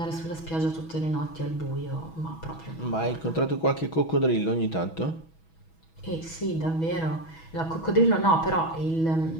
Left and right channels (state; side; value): late; right; 6.2 ms